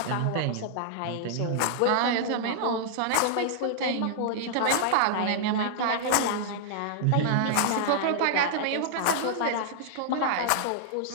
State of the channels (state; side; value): different; both; correlation -0.01